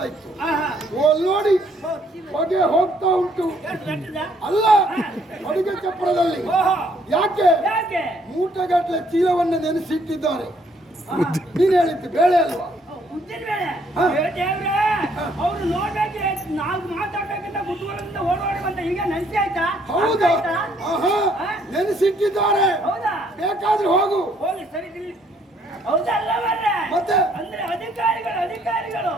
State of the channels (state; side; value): normal; both; correlation 0.66